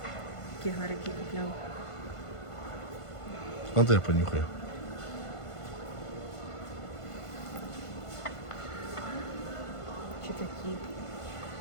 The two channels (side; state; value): right; late; 1.5 ms